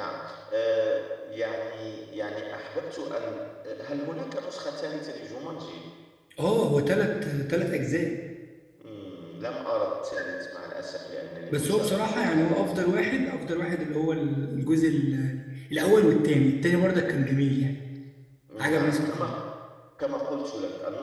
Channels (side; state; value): both; identical; correlation 1.00